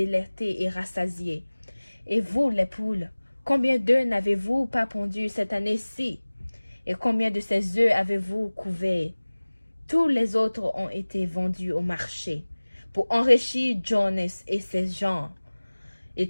et rassasié. Et vous, les poules, combien d'œufs n'avez-vous pas pondus cette année-ci? Et combien de ces œufs avez-vous couverts? Tous les autres ont été vendus au marché pour enrichir Jonas et ses gens. Et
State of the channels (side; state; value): both; inverted; correlation -1.00